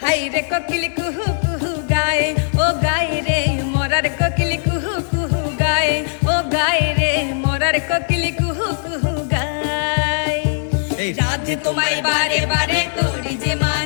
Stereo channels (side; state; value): right; silent; digital silence